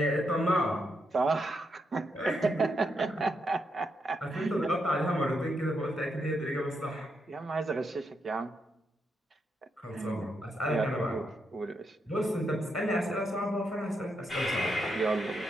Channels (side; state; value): both; normal; correlation 0.81